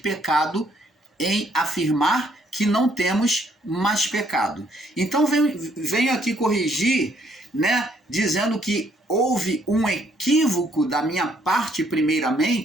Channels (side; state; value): both; normal; correlation 0.68